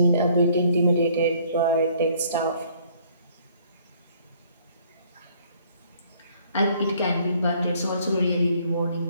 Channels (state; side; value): inverted; both; correlation -0.61